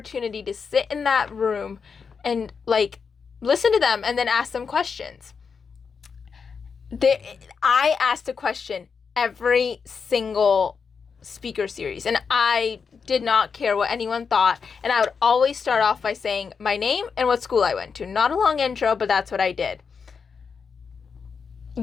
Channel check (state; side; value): quieter; right; 5.8 dB